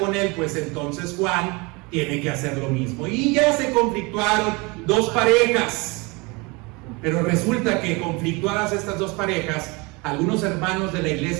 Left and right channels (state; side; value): quieter; left; 27.0 dB